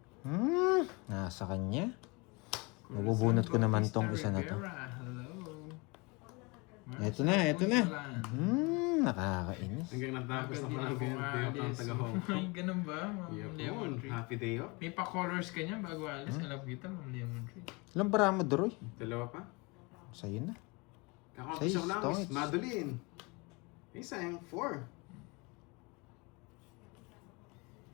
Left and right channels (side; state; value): right; quieter; 27.6 dB